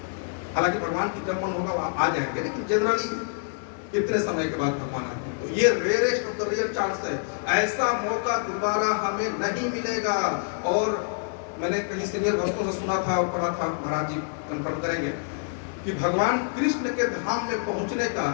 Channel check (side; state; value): right; silent; 61 dB below the other